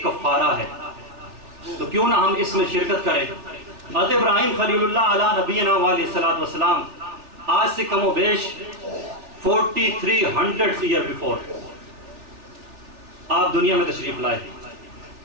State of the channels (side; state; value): left; late; 3.4 ms